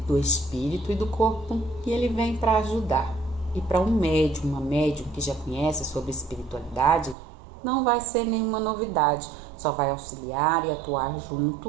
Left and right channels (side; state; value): left; drops out; at 7.2 s